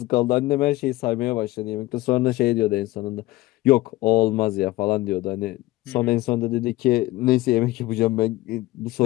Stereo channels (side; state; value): right; quieter; 18.3 dB